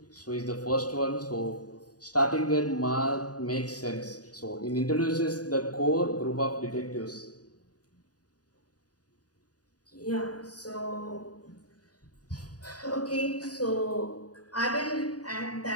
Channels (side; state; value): right; late; 0.68 ms